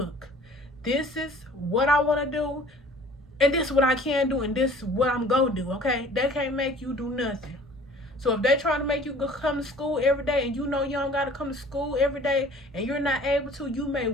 this is what I want to do, and this is what I can do, and this is what I'm going to do, okay? They can't make you do nothing. So if they're trying to make you go come to school every day, and you don't got to come to school every day, and you're not able to, you may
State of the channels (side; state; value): both; normal; correlation 0.49